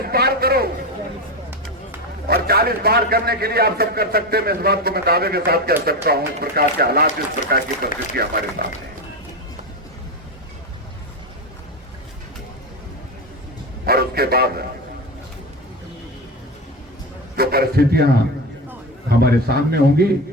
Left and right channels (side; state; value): both; normal; correlation 0.18